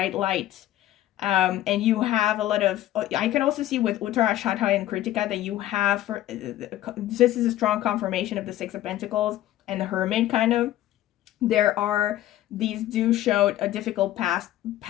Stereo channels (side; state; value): right; quieter; 14.0 dB